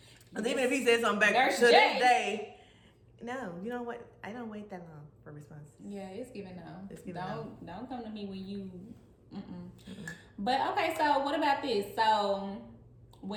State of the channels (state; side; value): identical; both; correlation 1.00